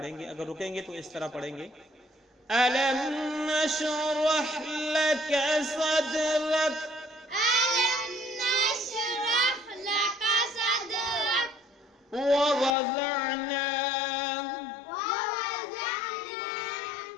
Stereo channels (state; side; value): drops out; right; at 12.8 s